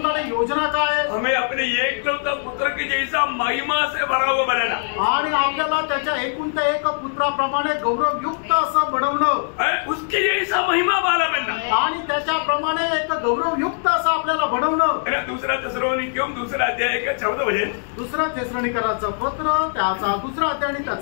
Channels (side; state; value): right; silent; digital silence